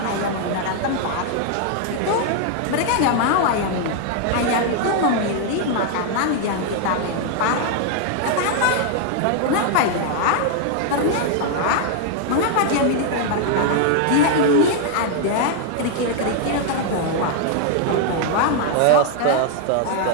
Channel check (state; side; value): different; both; correlation 0.00